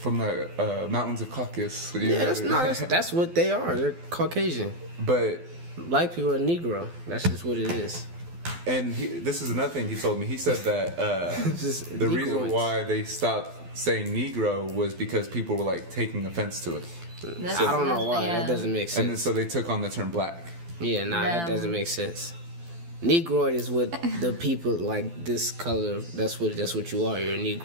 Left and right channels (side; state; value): left; late; 12 ms